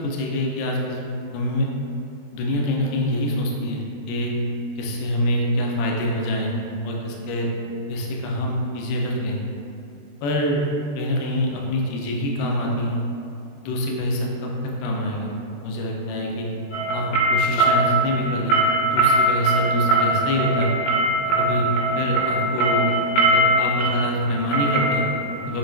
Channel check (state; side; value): late; right; 21 ms